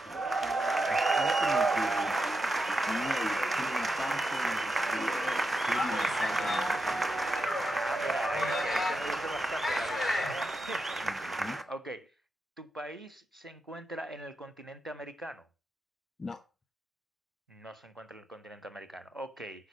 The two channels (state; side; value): normal; both; correlation 0.86